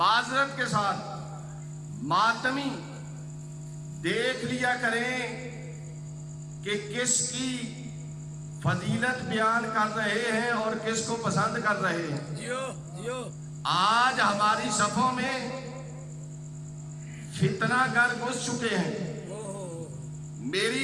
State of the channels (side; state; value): both; identical; correlation 1.00